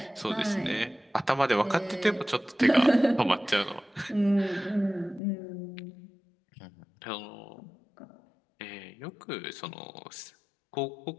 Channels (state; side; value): drops out; right; at 5.2 s